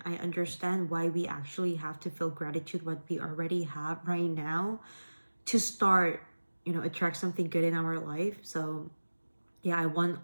I understand why we actually have to feel gratitude what we already have right now to start, attract something good in our life. So yeah, I want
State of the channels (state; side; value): inverted; both; correlation -1.00